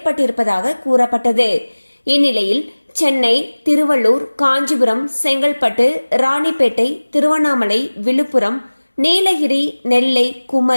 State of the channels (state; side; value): inverted; both; correlation -1.00